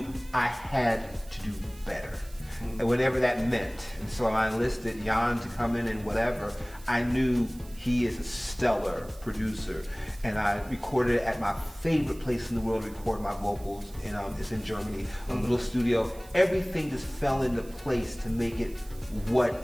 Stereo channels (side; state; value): right; noise; hiss, 22 dB below the sound